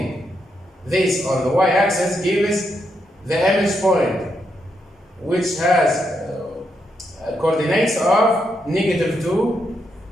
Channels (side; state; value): both; normal; correlation 0.80